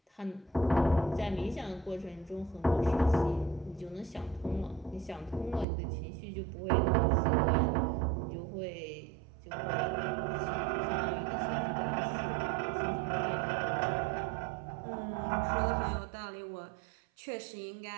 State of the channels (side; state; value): left; drops out; at 5.7 s